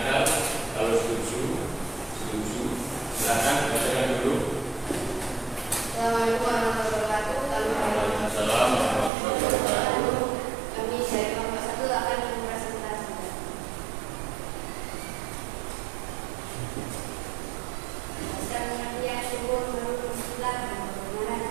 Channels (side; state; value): left; drops out; at 9.1 s